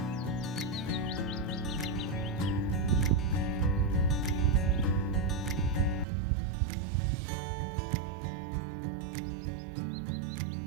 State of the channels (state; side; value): drops out; left; at 6.1 s